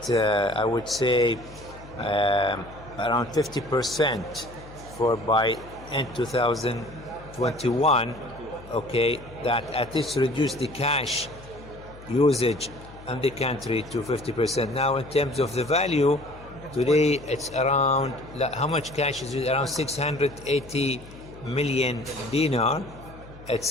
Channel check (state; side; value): noise; left; hum, 18 dB below the sound